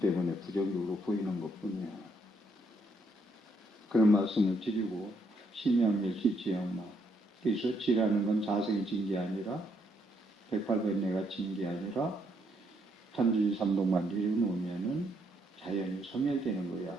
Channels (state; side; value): normal; both; correlation 0.74